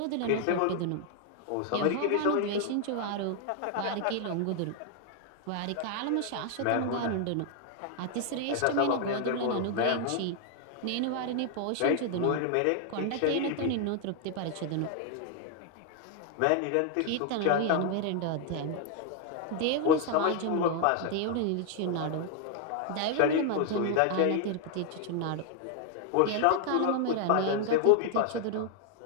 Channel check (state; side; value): different; both; correlation 0.00